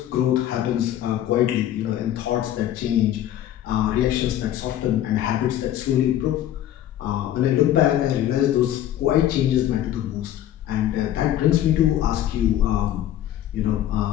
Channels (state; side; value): quieter; right; 12.0 dB